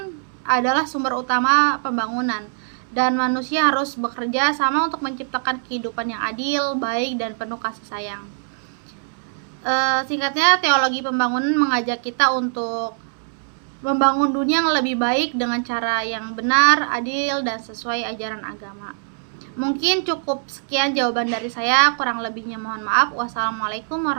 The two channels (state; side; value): silent; left; 64 dB below the other